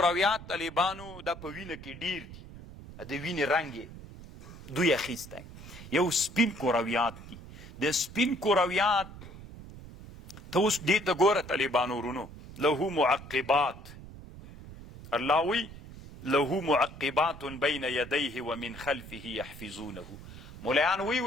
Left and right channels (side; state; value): right; noise; rumble, 15 dB below the sound